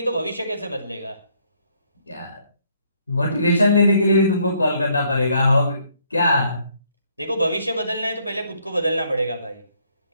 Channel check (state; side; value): inverted; both; correlation -0.69